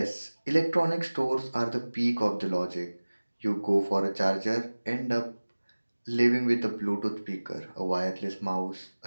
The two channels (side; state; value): both; inverted; correlation -1.00